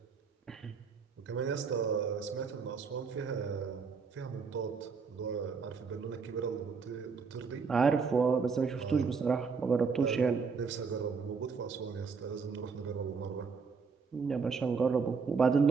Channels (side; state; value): left; quieter; 5.3 dB